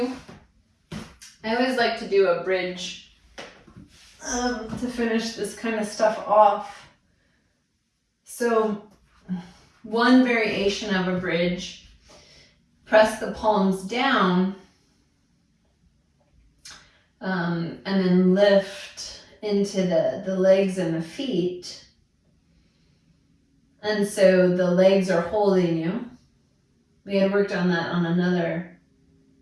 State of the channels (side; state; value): both; identical; correlation 1.00